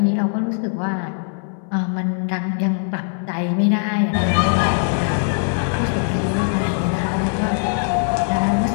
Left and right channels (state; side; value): silent; right; 63 dB below the other